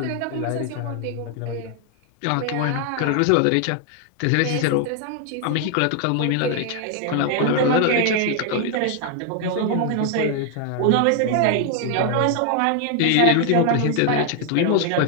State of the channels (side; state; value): both; different; correlation 0.00